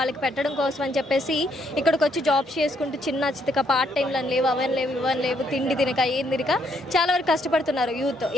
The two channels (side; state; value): both; normal; correlation 0.72